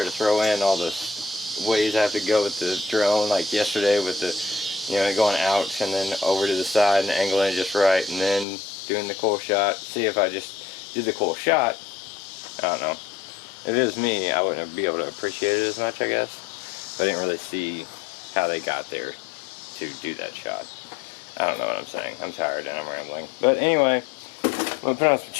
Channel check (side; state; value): right; drops out; at 8.5 s